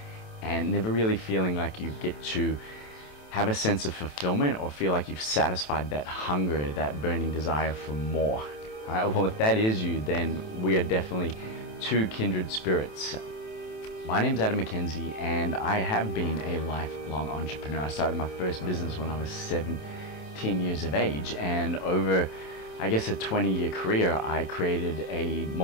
and never really feeling like you get to have a sense of fulfillment or feel like you've satisfied that hunger, that burning desire for more? All right, well, if that is you, then we are definitely two kindred spirits. My name's Adam McKenzie, and I have been a lifelong entrepreneur. I started my first business when I was 17 years of age, and over, I guess, a 20-year career, I created a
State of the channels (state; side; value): late; right; 27 ms